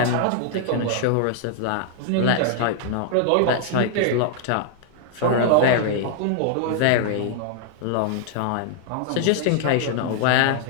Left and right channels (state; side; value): different; both; correlation -0.01